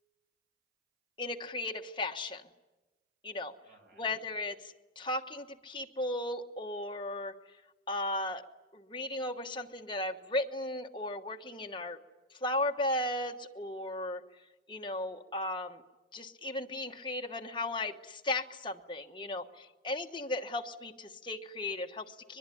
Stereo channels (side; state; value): both; normal; correlation -0.01